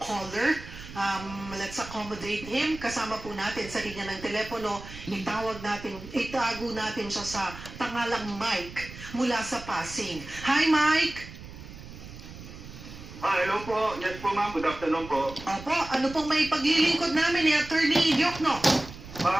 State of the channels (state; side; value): noise; right; rumble, 14 dB below the sound